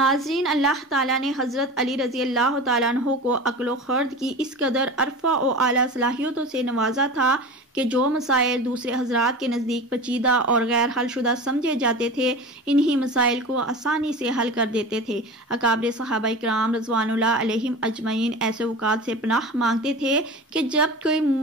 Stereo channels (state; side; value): normal; both; correlation 0.32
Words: اللہ تعالیٰ نے حضرت علی رضی اللہ تعالیٰ عنہ کو عقل و خرد کی اس قدر عرفہ و اعلیٰ صلاحیتوں سے نوازا تھا کہ جو مسائل دوسرے حضرات کے نزدیک پیچیدہ اور غیر حل شدہ سمجھے جاتے تھے، انہی مسائل کو آسانی سے حل کر دیتے تھے۔ اکابر صحابہ کرام رضوان اللہ علیہم اجمعین ایسے اوقات سے پناہ مانگتے تھے کہ جب کوئی